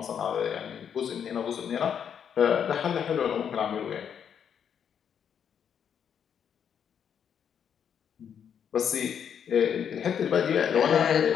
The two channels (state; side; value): quieter; right; 8.1 dB